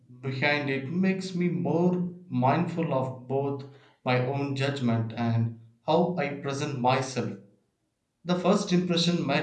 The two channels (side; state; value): both; identical; correlation 1.00